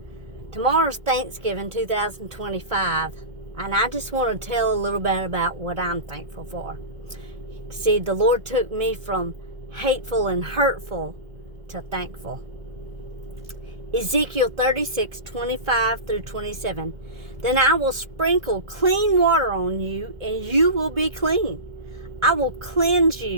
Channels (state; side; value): late; left; 1.7 ms